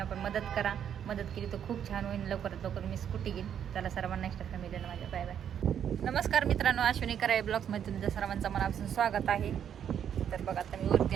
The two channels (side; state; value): left; quieter; 9.0 dB